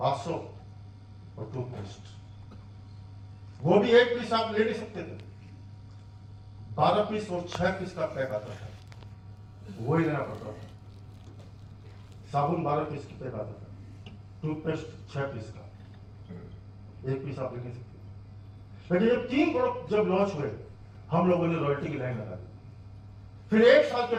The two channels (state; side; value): identical; both; correlation 1.00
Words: और टूथपेस्ट। वो भी 1 पीस आप ले नहीं सकते थे, 12 पीस और 6 पीस का पैक आता था, वो ही लेना पड़ता था। साबुन 12 पीस की पैक आता था, टूथपेस्ट 6 पीस का, 1 पीस आप ले नहीं सकते। लेकिन जब 3 प्रोडक्ट जब लॉन्च हुए, हम लोगों ने रॉयल्टी की लाइन लगा दी। फिर 1 साल के